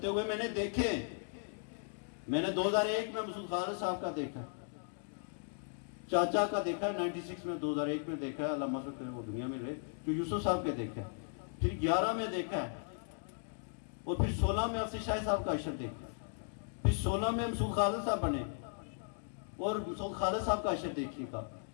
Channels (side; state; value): right; silent; digital silence